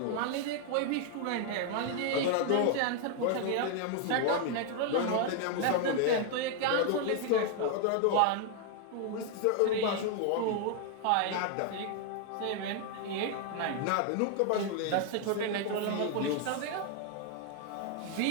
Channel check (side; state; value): both; different; correlation 0.00